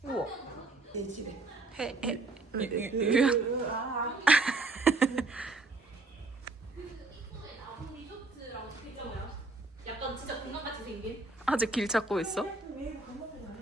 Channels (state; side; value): quieter; left; 3.4 dB